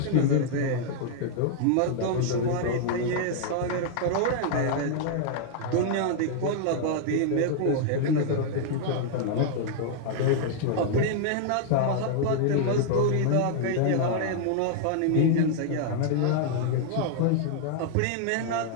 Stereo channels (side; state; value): both; different; correlation -0.01